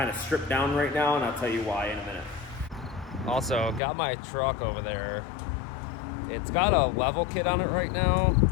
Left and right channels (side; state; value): right; drops out; at 3.8 s